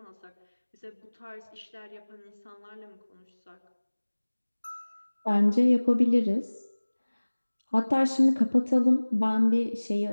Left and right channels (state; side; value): inverted; both; correlation -1.00